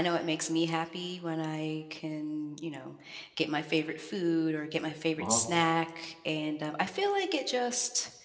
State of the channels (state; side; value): identical; both; correlation 1.00